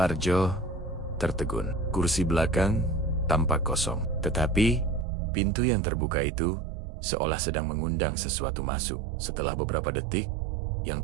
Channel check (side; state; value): left; drops out; at 5.1 s